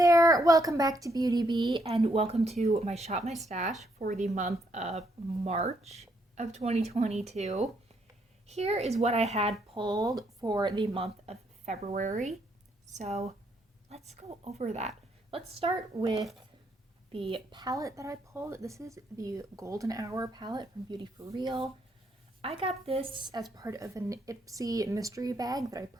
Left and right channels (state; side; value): normal; both; correlation 0.74